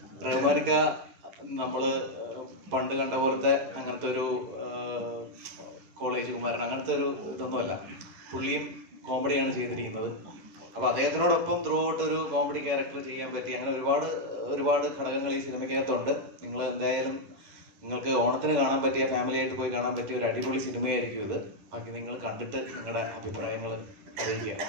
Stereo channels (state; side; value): late; left; 11 ms